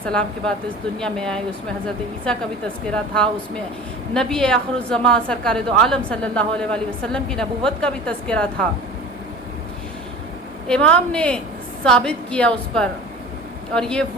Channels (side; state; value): both; normal; correlation 0.39